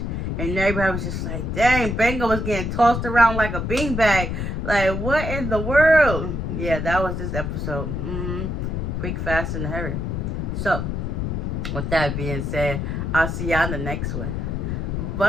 And everybody was just like, dang, Banger was getting tossed around like a beanbag. Like, what in the world? Yeah, that was this episode. Quick, fast, and hurry. So, with that being said, I'll see y'all in the next one.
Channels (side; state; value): left; noise; rumble, 2 dB below the sound